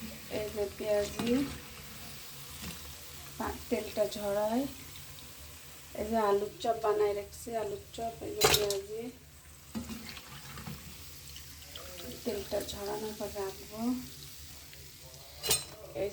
এই যে পেঁয়াজি, তেলটা ঝরাই। এই যে আলুর চপ বানাই রাখছি, আলুর চপ। এই যে পেঁয়াজি, তেলটা ঝরানোর পর রাখবো। এই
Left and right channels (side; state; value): both; identical; correlation 1.00